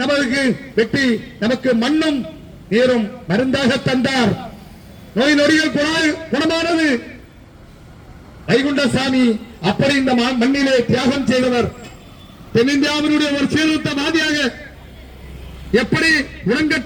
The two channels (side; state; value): both; identical; correlation 1.00